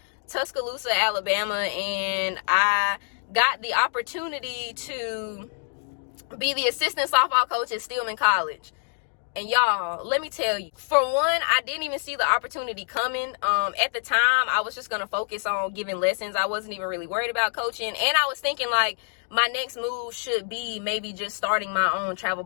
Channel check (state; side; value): silent; right; 61 dB below the other